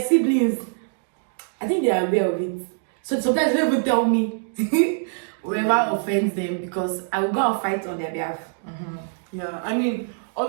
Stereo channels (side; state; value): left; silent; digital silence